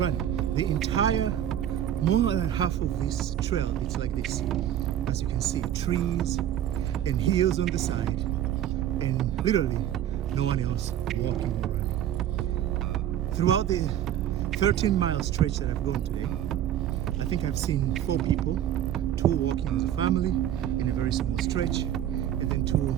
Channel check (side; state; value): left; quieter; 11.1 dB